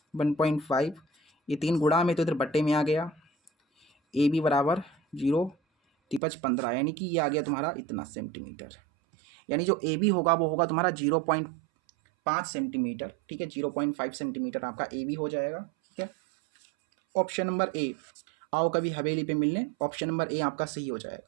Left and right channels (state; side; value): drops out; left; at 6.2 s